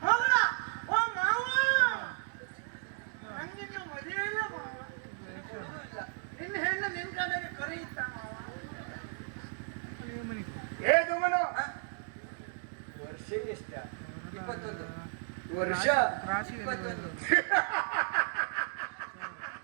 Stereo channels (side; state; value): left; silent; digital silence